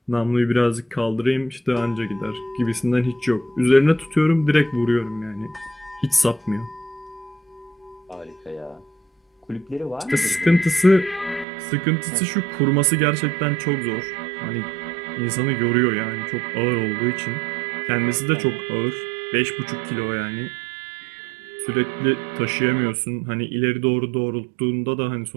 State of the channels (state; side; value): drops out; left; at 11.5 s